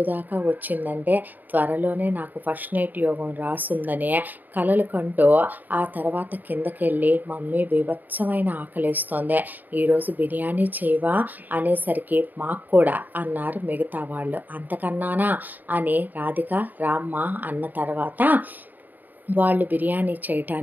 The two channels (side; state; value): left; late; 0.086 ms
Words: దాకా వచ్చిందంటే త్వరలోనే నాకు ఫస్ట్ నైట్ యోగం రాసుందనే కలలు కంటూ ఆ తర్వాత కిందకెళ్ళి మమ్మీ బీభత్సమైన ఆకలేస్తోంది, ఈరోజు బిర్యానీ చేయవా అనేసరికి మాకు కూడా అన్నారు మిగతా వాళ్ళు. అంతకన్నానా అని రాధిక రామ్మ అన్న తర్వాత వాళ్ళు బిర్యానీ